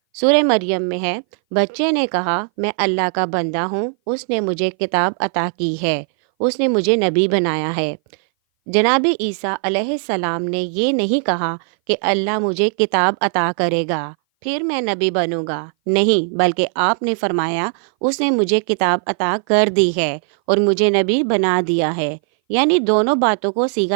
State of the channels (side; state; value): left; silent; 59 dB below the other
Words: سورہ مریم میں ہے، بچے نے کہا، میں اللہ کا بندہ ہوں، اس نے مجھے کتاب عطا کی ہے، اس نے مجھے نبی بنایا ہے۔ جناب عیسیٰ علیہ السلام نے یہ نہیں کہا کہ اللہ مجھے کتاب عطا کرے گا پھر میں نبی بنوں گا، نہیں، بلکہ آپ نے فرمایا اس نے مجھے کتاب عطا کر دی ہے اور مجھے نبی بنا دیا ہے، یعنی دونوں باتوں کو